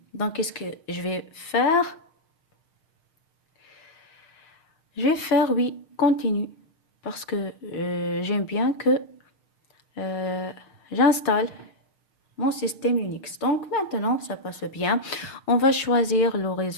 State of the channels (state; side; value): late; right; 6.5 ms